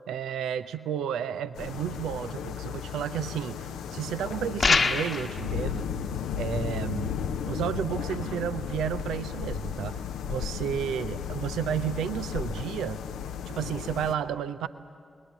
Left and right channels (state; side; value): normal; both; correlation 0.57